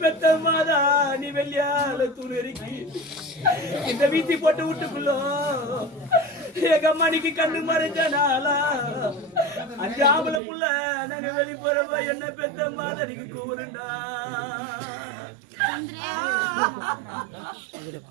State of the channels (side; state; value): left; drops out; at 10.4 s